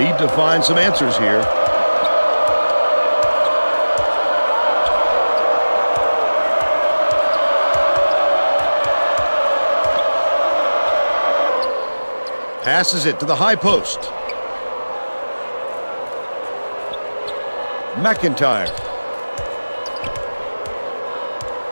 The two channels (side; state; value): both; inverted; correlation -1.00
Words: to find some answers here. Passes it to the high post. McIntyre.